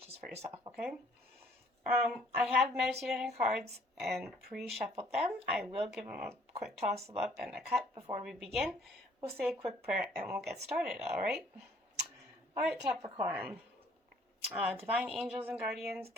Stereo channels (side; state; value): both; normal; correlation 0.61